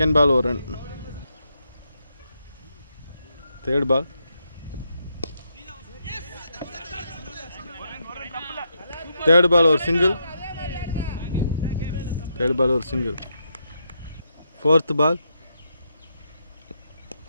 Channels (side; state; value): both; inverted; correlation -0.80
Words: பால் ஒரு run. Third ball. Third ball ஒரு சிங்கிள். தேர்ட் பால் ஒரு single. Fourth ball.